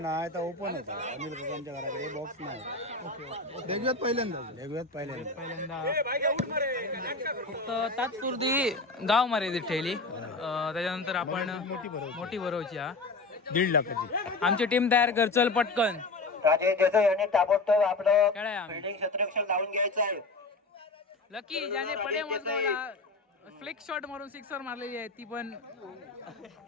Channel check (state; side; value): quieter; right; 3.4 dB